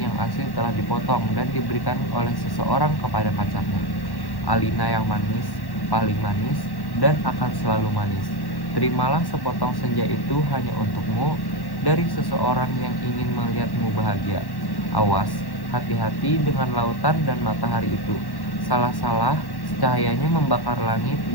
yang asli telah dipotong dan diberikan oleh seseorang kepada pacarnya. Alina yang manis, paling manis, dan akan selalu manis. Terimalah sepotong senja itu hanya untukmu dari seseorang yang ingin melihatmu bahagia. Awas, hati-hati dengan lautan dan matahari itu. Salah-salah, cahayanya membakar langit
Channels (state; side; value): late; right; 1.1 ms